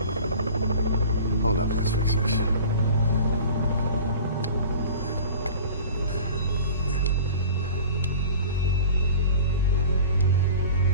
Hold up, let's fix this.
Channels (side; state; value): both; inverted; correlation -0.40